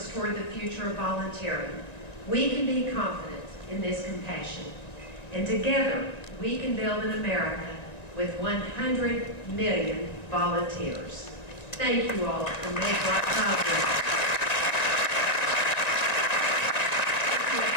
toward the future of volunteering, we can be confident in this compassion. And together, we can build an America with 100 million volunteers. Thank you all for making our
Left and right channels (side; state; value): right; late; 1.9 ms